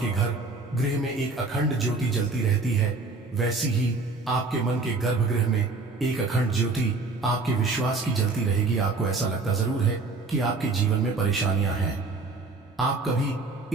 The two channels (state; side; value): quieter; left; 3.7 dB